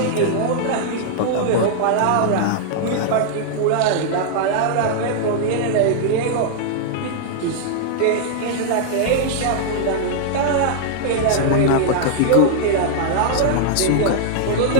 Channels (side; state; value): both; different; correlation -0.01